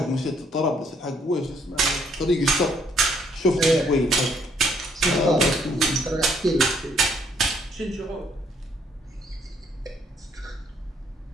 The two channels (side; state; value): both; normal; correlation 0.67